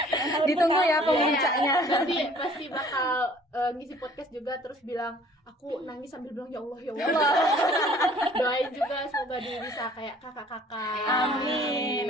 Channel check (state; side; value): normal; both; correlation 0.54